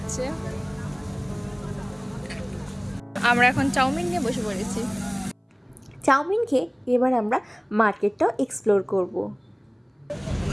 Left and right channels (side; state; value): both; identical; correlation 1.00